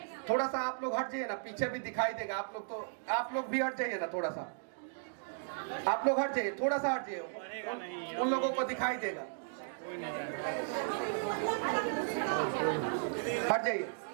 थोड़ा सा आप लोग हट जाइए ना, पीछे भी दिखाई देगा। आप लोग भी हट जाइए ना, थोड़ा सा आप लोग हट जाइए, थोड़ा सा हट जाइए, उन लोगों को दिखाई देगा। हट जाइए,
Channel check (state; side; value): silent; left; digital silence